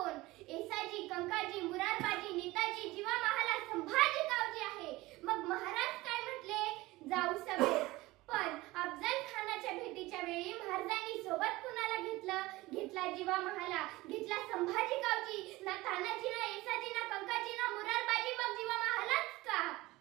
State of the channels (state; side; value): quieter; left; 19.8 dB